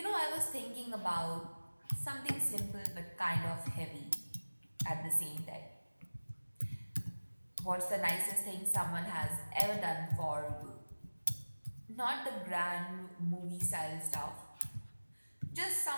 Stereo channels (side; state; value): both; inverted; correlation -1.00